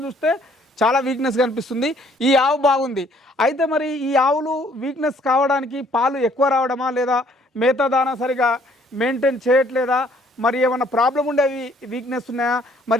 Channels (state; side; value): normal; both; correlation 0.62